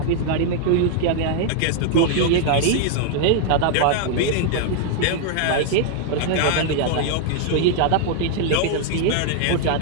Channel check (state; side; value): different; both; correlation 0.00